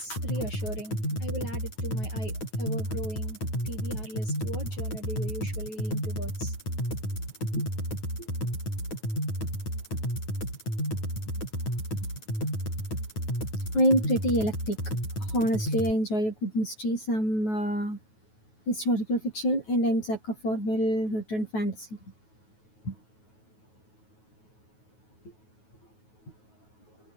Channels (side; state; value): right; late; 9.3 ms